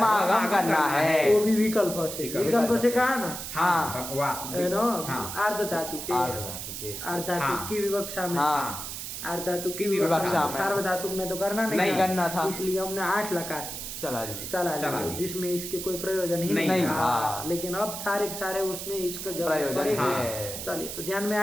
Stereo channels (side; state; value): right; noise; hiss, 7 dB below the sound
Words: आगम करना है। वो भी विकल्प से। विकल्प से कहा ना हाँ। वास। है ना। हाँ। अर्ध धातु के। आर्धधातुके। अर्ध धातु हाँ। की विवक्षा में। हाँ। अर्ध धातु की विवक्षा विवक्षा में। सार्वधातुक में तो करना नहीं करना था। इसलिए हमने 8 लकार चला चला चला लिया, लिया। जिसमें इसके कोई प्रयोजन ही नहीं था। लेकिन अब सारे के सारे उसमें इसका जरूरत प्रयोजन पड़ेगा। है। चलिए तो ध्यान में